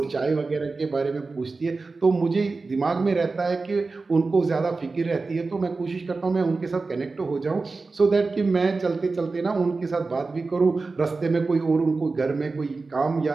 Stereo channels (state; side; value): quieter; left; 3.9 dB